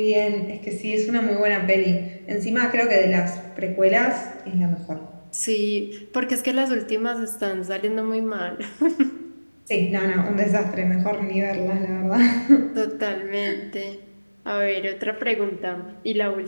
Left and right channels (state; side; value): inverted; both; correlation -1.00